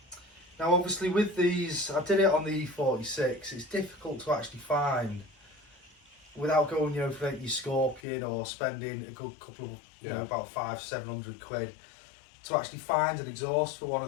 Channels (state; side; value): drops out; right; at 8.0 s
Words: Now, obviously, with these, I did it on the E46. It's difficult to actually find without going, for your Scorpion or spending a good couple of, about 500-700 quid to actually find an exhaust for one